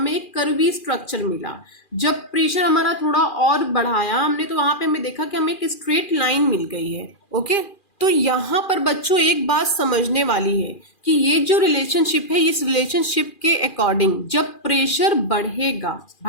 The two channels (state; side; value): late; right; 2.4 ms